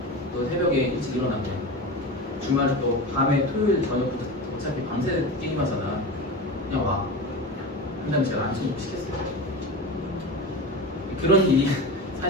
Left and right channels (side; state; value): both; normal; correlation 0.27